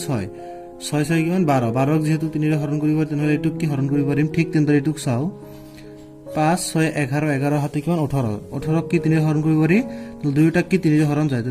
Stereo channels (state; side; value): identical; both; correlation 1.00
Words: 6 6 6 কিমান 12 12 ক যেহেতু 3 ৰে হৰণ কৰিব তেনেহ'লে এইটোক কি হৰণ কৰিব পাৰিম ঠিক তেনেদৰে এইটোক চাও 5 6 11 11 হাতে কিমান 18 18 ক কি 3 ৰে হৰণ কৰিব পাৰি দুয়োটা কি 3 ৰে হৰণ যায়